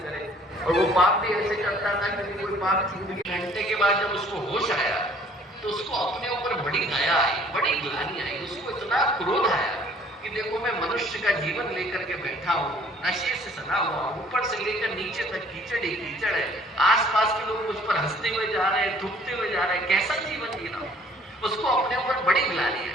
करे, और वो पाप भी ऐसे करता था कि कोई पाप छूट गया, घंटे के बाद जब उसको होश आया तो उसको अपने ऊपर बड़ी दया आई, बड़ी ग्लानि आई, उसको इतना क्रोध आया कि देखो मैं मनुष्य का जीवन लेकर के बैठा हूँ, नशे से सना हुआ, ऊपर से लेकर नीचे तक कीचड़ ही कीचड़ है, आसपास के लोग मुझ पर हंसते हुए जा रहे हैं, थूकते हुए जा रहे हैं, कैसा जीवन जी रहा हूँ। उसको अपने ऊपर बड़ी ग्लानि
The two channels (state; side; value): normal; both; correlation 0.56